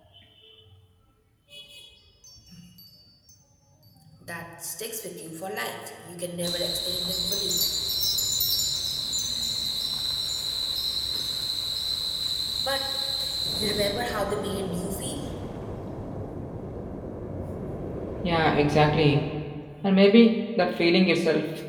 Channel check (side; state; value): both; identical; correlation 1.00